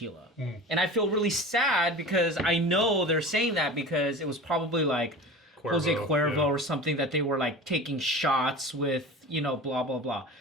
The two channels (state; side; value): normal; both; correlation 0.35